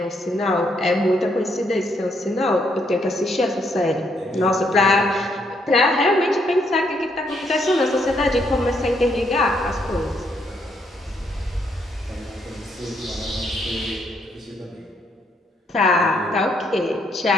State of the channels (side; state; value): both; normal; correlation 0.73